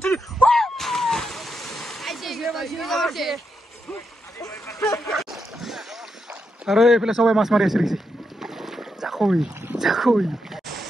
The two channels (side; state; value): both; normal; correlation 0.83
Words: 3 আৰু এইফালে সবাই মাছ মাৰি আছে দেখিছে জাকৈ জাকৈ